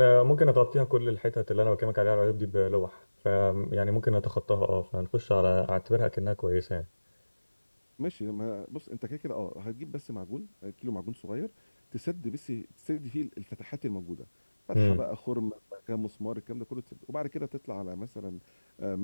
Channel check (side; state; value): both; inverted; correlation -1.00